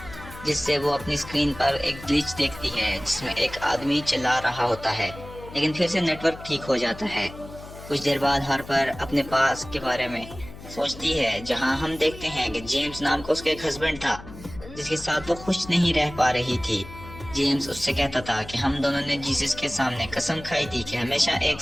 جس سے وہ اپنی سکرین پر ایک گلیچ دیکھتی ہے جس میں ایک آدمی چلا رہا ہوتا ہے، لیکن پھر سے نیٹ ورک ٹھیک ہو جاتا ہے۔ کچھ دیر بعد ہارپر اپنے پاس کے بارے میں سوچتی ہے، جہاں ہم دیکھتے ہیں کہ جیمز نام کا اس کا ایک ہسبینڈ تھا جس کے ساتھ وہ خوش نہیں رہ پا رہی تھی۔ جیمز اس سے کہتا تھا کہ ہم دونوں نے جیسس کے سامنے قسم کھائی تھی کہ ہمیشہ ایک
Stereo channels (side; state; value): left; noise; hum, 15 dB below the sound